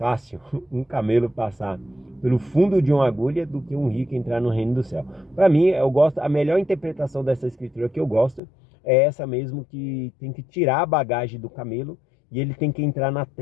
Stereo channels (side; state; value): right; drops out; at 8.4 s